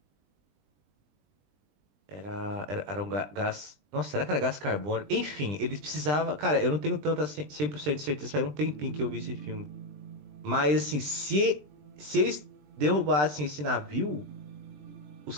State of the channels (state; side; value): late; left; 20 ms